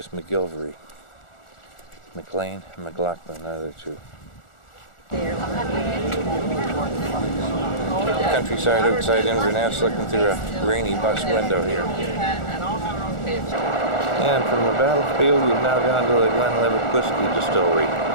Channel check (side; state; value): right; late; 1.4 ms